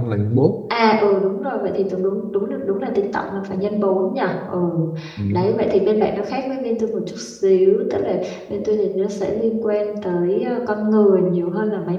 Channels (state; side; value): identical; both; correlation 1.00